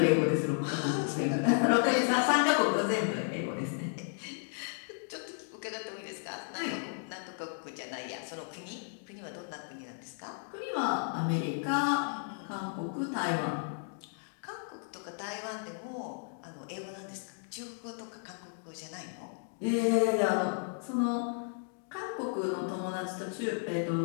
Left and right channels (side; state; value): right; silent; 55 dB below the other